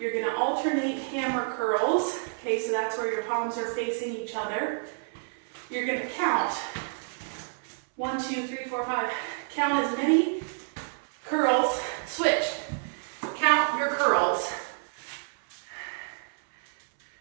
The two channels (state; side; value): silent; left; 59 dB below the other